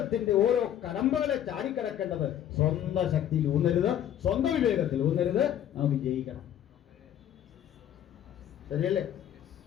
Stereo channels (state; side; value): quieter; right; 10.7 dB